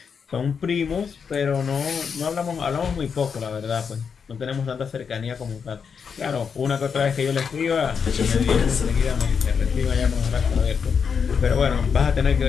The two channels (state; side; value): quieter; right; 6.3 dB